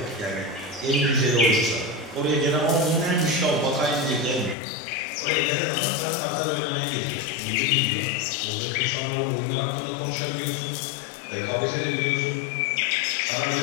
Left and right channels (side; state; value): right; drops out; at 4.5 s